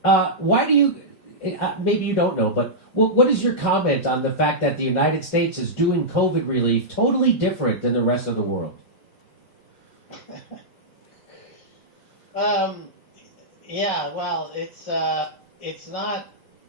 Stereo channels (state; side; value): late; right; 5.1 ms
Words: why do you, maybe you don't know, but What is your comment on the fact that the United States is doing COVID relief totally different than the rest of the world? Yeah, well, it's not.